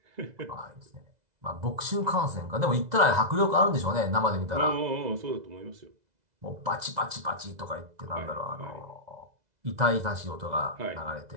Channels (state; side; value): late; left; 2.0 ms